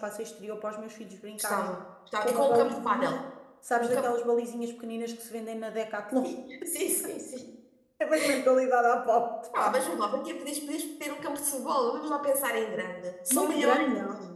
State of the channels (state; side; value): identical; both; correlation 1.00